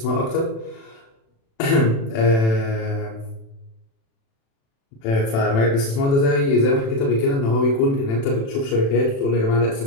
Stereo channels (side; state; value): right; late; 36 ms